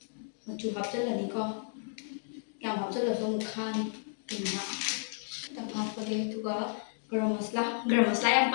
ꯍꯥꯞꯆꯤꯜꯂꯅꯤꯀꯣ ꯌꯥꯝ ꯍꯥꯞꯆꯤꯜꯂꯁꯨ ꯑꯃꯨꯛ ꯈꯥꯅꯤ ꯈꯤꯇꯪ ꯍꯥꯞꯄꯒꯦ ꯑꯗꯨꯒ ꯒꯔꯝ ꯃꯁꯂꯥ ꯌꯥꯝ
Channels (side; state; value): right; silent; digital silence